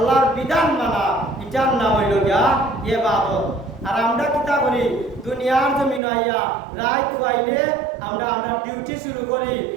বিধান মানা, এটার নাম হইল গিয়া ইবাদত। আর আমরা কিতা করি দুনিয়ার জমিনে আইয়া রাত হইলে আমরা ডিউটি শুরু করি,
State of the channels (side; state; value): left; drops out; at 6.0 s